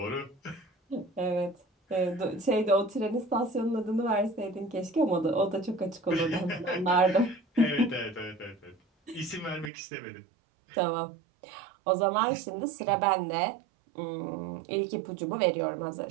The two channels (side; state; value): left; drops out; at 9.7 s